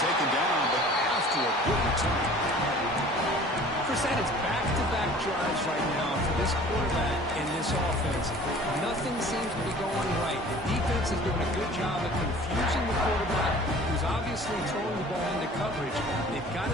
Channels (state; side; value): normal; both; correlation 0.47